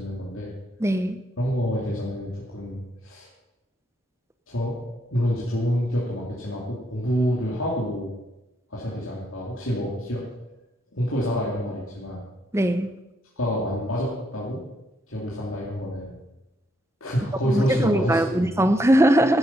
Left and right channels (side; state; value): both; normal; correlation 0.76